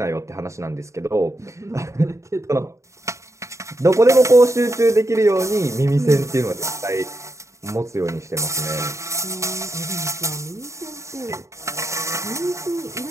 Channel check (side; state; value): left; late; 0.14 ms